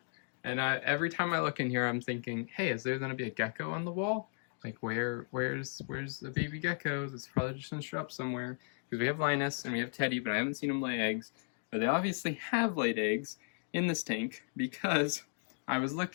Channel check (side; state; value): right; silent; digital silence